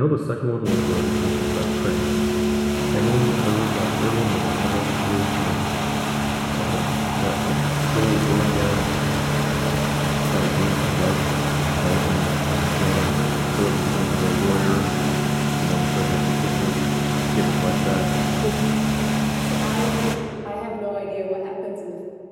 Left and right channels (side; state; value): both; identical; correlation 1.00